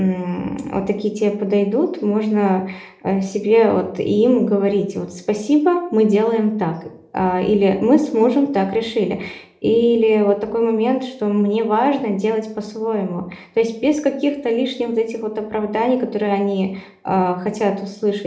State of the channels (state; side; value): identical; both; correlation 1.00